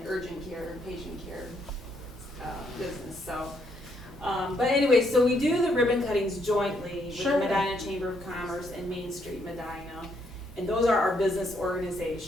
urgent care, patient care business. So, but anyway, so we do the ribbon cuttings jointly with Sure. the Medina Chamber of Commerce and Main Street Medina, and those are our business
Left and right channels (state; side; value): normal; both; correlation 0.73